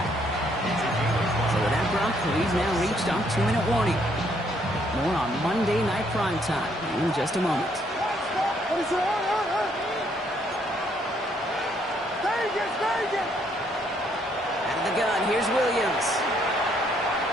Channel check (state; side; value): normal; both; correlation 0.69